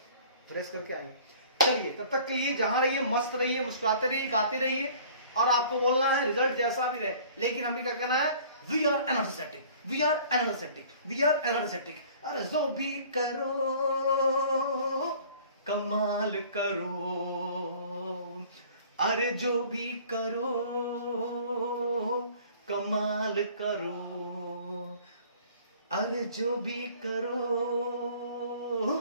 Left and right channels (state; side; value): inverted; both; correlation -0.50